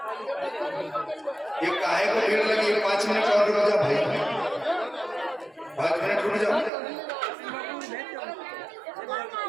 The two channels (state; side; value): drops out; left; at 6.7 s